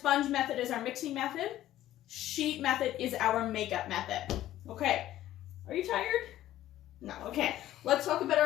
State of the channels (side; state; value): right; quieter; 13.7 dB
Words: method is our mixing method. Sheet method is our makeup method. Okay, are you tired? No, okay. Let's talk about